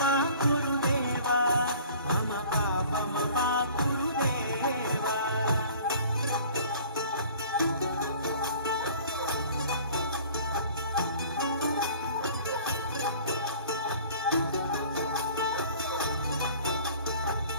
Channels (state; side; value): inverted; both; correlation -0.48